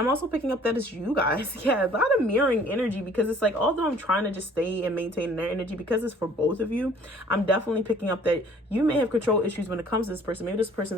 also picking up that it's you guys. Yeah, a lot of mirroring energy, because it's like, although I'm trying to just stay and maintain their energy, because it's for both of you, I'm definitely picking up that you may have control issues when it comes to this person. Maybe this person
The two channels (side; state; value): both; normal; correlation 0.55